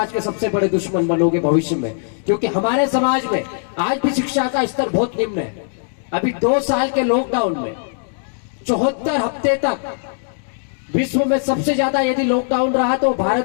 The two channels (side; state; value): right; silent; digital silence